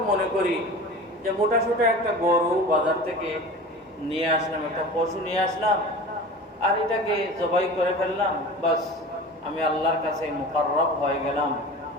মনে করি যে মোটা সোটা একটা গরু বাজার থেকে নিয়ে আসলাম, একটা পশু নিয়ে আসলাম আর এটাকে জবাই করে ফেললাম, বাস আমি আল্লাহর কাছে মুকাররব হয়ে গেলাম,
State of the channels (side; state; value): both; normal; correlation 0.36